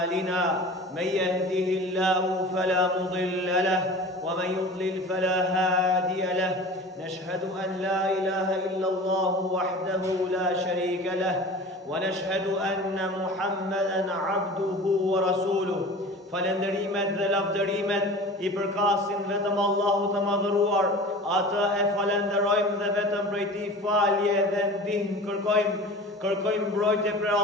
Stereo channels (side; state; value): both; normal; correlation 0.38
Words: من يهده الله فلا مضل له ومن يضلل فلا هادي له نشهد أن لا إله إلا الله وحده لا شريك له ونشهد أن محمدا عبده ورسوله falenderimet dhe lavdërimet I përkasin vetëm Allahu të madhëruar, atë e falenderojmë dhe vetëm prej Tij falje dhe ndihmë kërkojmë mbrojtje prej